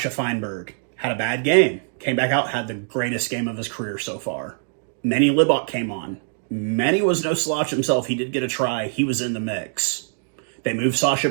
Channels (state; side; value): silent; left; digital silence